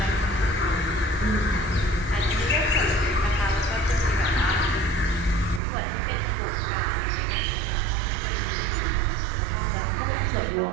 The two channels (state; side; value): drops out; left; at 5.6 s